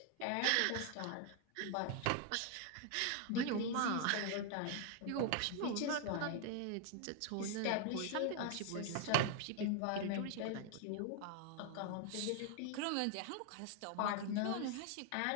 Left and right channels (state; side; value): different; both; correlation 0.00